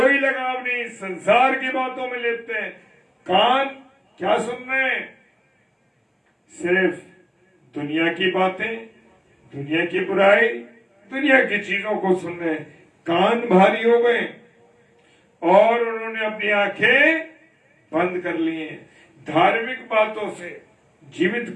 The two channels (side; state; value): both; identical; correlation 1.00